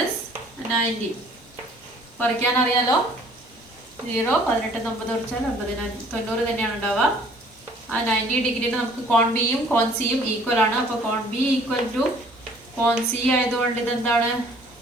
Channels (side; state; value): both; normal; correlation 0.56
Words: 90. കുറയ്ക്കാൻ അറിയാലോ. 0 18 9 കുറച്ചാൽ 90 തന്നെയാണ് ഉണ്ടാവുക. ആ 90 ഡിഗ്രിയിൽ നമുക്ക് കോൺ ബിയും കോൺ സിയും ഈക്വൽ ആണ്. അപ്പോൾ കോൺ ബി ഈക്വൽ ടു കോൺ സി ആയതുകൊണ്ട് ഇതെന്താണ്